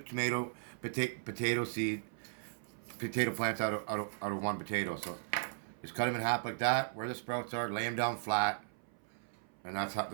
potato plants out of one potato. So just cut them in half like that, where the sprouts are, lay them down flat, and that's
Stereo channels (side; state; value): left; silent; 53 dB below the other